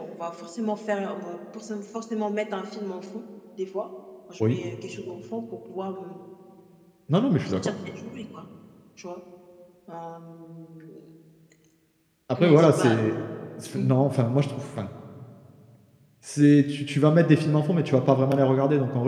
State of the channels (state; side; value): identical; both; correlation 1.00